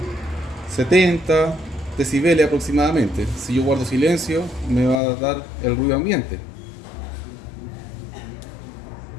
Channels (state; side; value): drops out; right; at 5.0 s